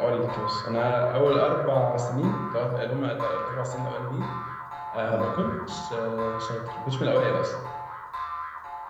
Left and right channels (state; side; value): identical; both; correlation 1.00